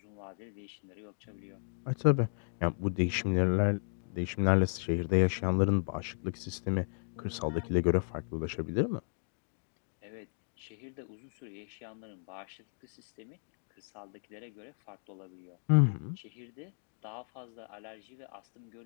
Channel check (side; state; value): right; silent; digital silence